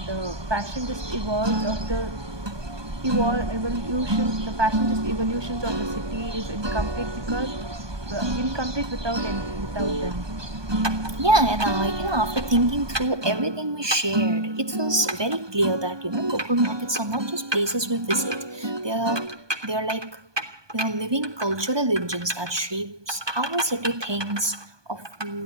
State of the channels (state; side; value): late; left; 1.2 ms